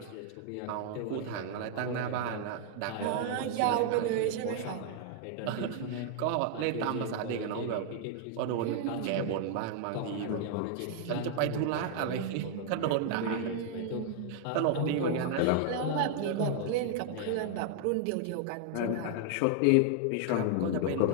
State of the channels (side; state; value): both; different; correlation 0.00